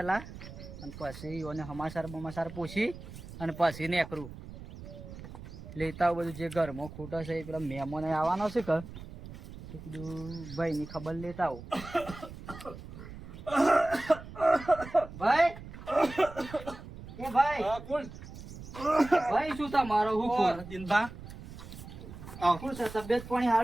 અને પછી એને સમાચાર પૂછી અને પછી નીકળું લેતા બધું જે ઘરમાં ખૂટે છે એ પેલા મહેમાન આવવાનો છે કે કીધું ભાઈની ખબર લેતા આવું. ભાઈ એ ભાઈ કોણ ભાઈ શું તમારો હું દિનભા શું છે તબિયત પાણી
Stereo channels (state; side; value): noise; right; rumble, 13 dB below the sound